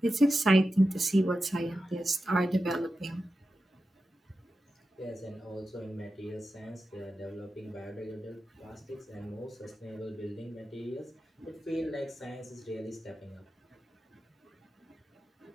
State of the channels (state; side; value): normal; both; correlation 0.91